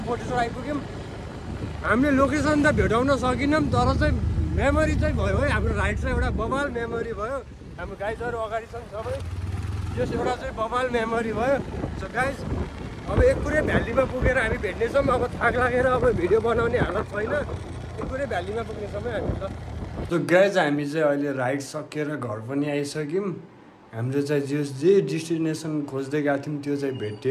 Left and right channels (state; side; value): identical; both; correlation 1.00